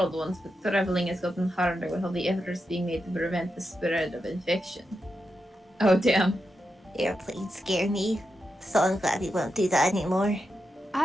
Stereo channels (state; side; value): normal; both; correlation 0.87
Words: once, but traveling has gotten harder with all the efforts being made to prevent the spread of infection. Oh, damn. Airplanes scare me, so I'm glad we won't do that anymore.